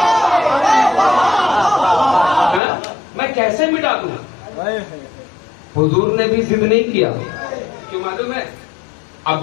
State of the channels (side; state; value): right; drops out; at 2.6 s